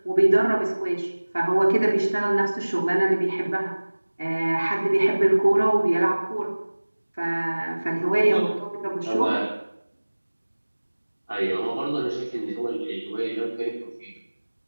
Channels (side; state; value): both; inverted; correlation -1.00